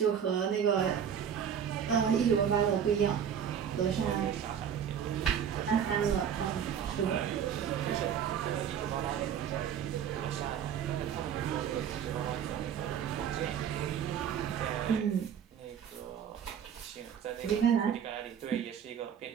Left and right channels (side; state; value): left; quieter; 8.4 dB